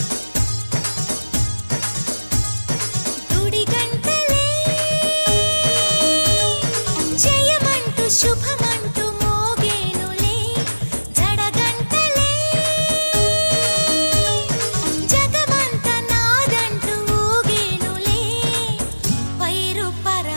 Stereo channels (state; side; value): inverted; both; correlation -1.00